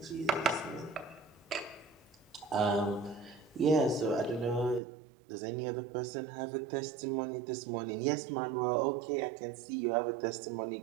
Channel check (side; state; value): left; drops out; at 4.8 s